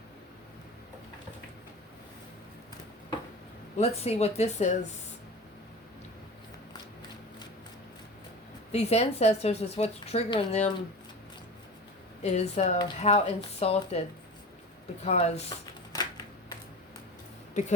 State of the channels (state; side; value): normal; both; correlation 0.33